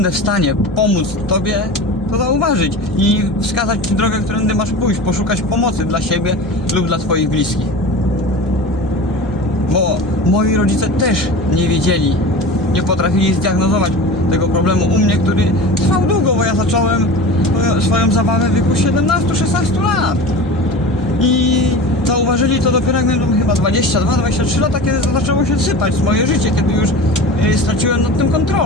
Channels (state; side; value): normal; both; correlation 0.33